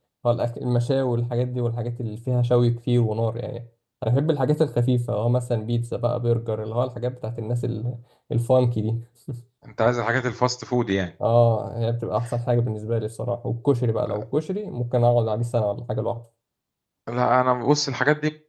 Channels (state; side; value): identical; both; correlation 1.00